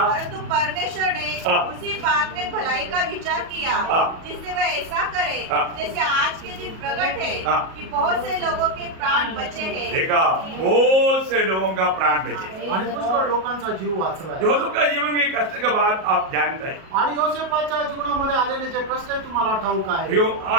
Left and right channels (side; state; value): left; late; 37 ms